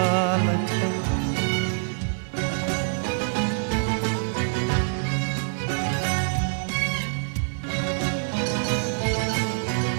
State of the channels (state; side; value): silent; left; 61 dB below the other